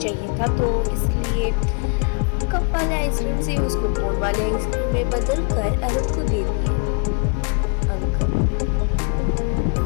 था। तो इसलिए कप वाले आइसक्रीम से उसको कोन वाले आइसक्रीम में बदल कर अरुण को दे दिए अंकल।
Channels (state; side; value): quieter; right; 38.5 dB